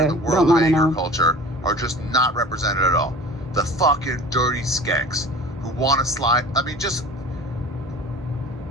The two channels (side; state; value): both; normal; correlation 0.41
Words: In the world don't want to know. Culture are just not represented at all. The fucking dirty skanks who want to slide. I mean, just